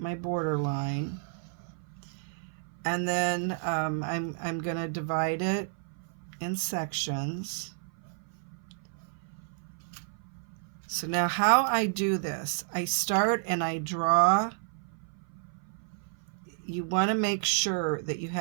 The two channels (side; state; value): left; silent; 55 dB below the other